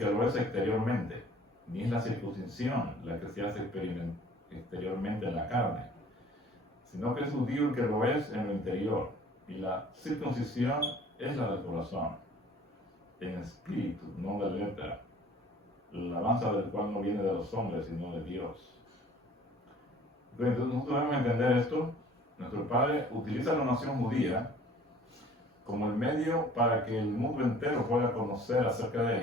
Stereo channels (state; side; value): normal; both; correlation 0.51